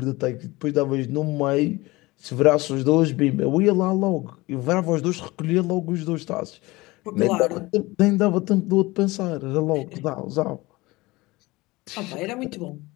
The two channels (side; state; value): right; quieter; 21.4 dB